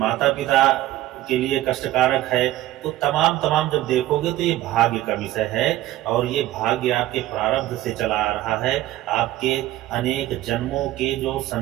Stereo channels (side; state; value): left; quieter; 15.3 dB